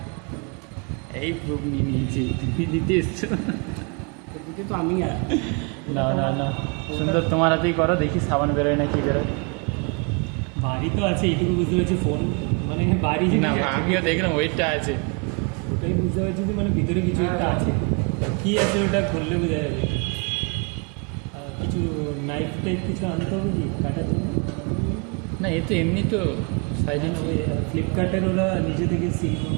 এই প্রুফ নিয়ে নিয়েছি, তুমি দিতে এসছো তো আমি না না না, সুন্দর তোমার হাতেই করো, দেখি সাবান বেরোয় না কি বেরোয়। বাড়ি তো আছে, এইটুকু বুঝতে পারছি ফোন মানে বাড়ি না, আমিও দেখলাম ওইটা আছে, ওটাই বুঝতে পারছি যে মানে ভিতরে কিছু একটা আছে। কি আছে ওটা খুললে বোঝা যাবে। কিছু নাইফ টাইপ কিছু আনতে হবে কি কাটার জন্য? না এ তো এমনি তো সাইডে ফ্লিপকার্টের ওরা নিজে থেকে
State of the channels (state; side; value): quieter; left; 34.2 dB